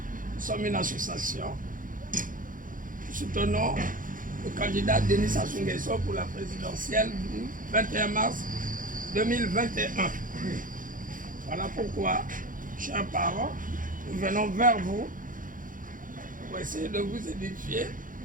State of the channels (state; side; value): late; left; 0.39 ms